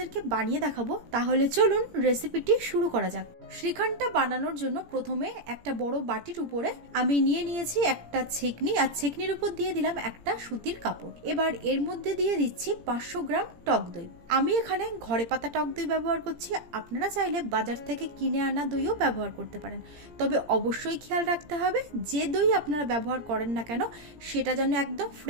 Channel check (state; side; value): late; left; 17 ms